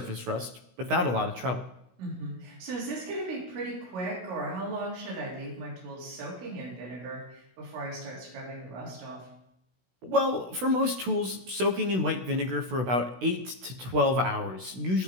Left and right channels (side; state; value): left; late; 16 ms